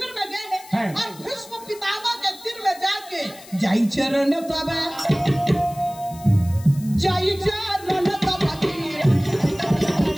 में गए और भीष्म पितामह के तीर में जाके जाई चरण तब जाई चरण तब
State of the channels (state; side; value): noise; left; hiss, 20 dB below the sound